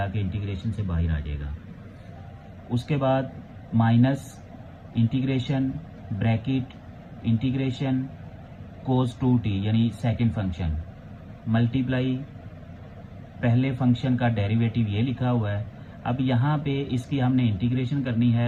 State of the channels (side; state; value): both; identical; correlation 1.00